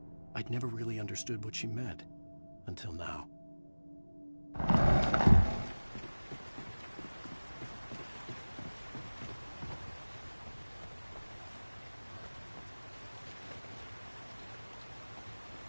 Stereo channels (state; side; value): inverted; both; correlation -1.00